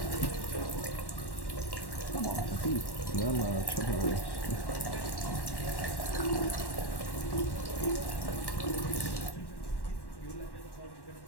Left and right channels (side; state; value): right; late; 1.1 ms